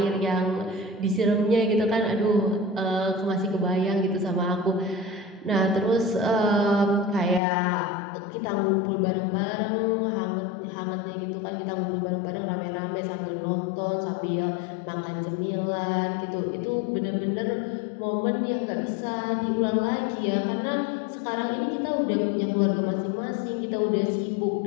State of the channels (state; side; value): drops out; right; at 7.4 s